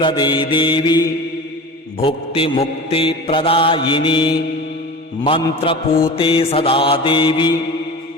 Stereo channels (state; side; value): normal; both; correlation 0.34